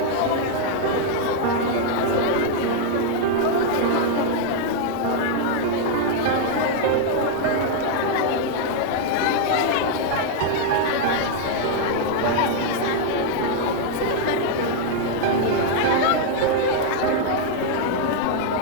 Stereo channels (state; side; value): different; both; correlation 0.00